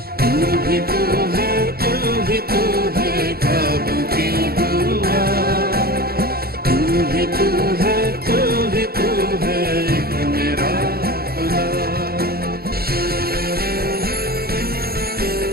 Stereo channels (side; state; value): left; late; 0.45 ms